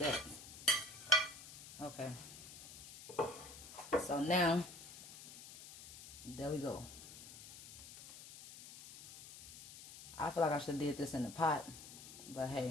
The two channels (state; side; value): noise; left; hiss, 15 dB below the sound